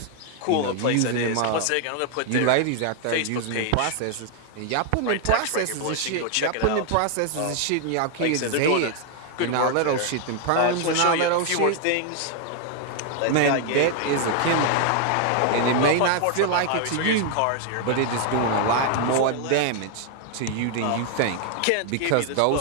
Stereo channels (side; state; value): both; different; correlation 0.00